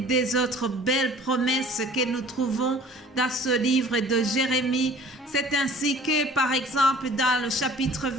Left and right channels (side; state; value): both; normal; correlation 0.49